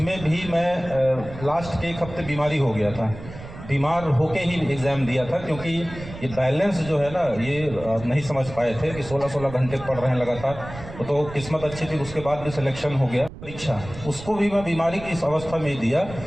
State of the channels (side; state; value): right; noise; rumble, 13 dB below the sound